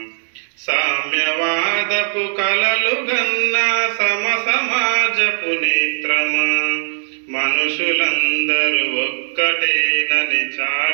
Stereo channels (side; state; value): left; silent; digital silence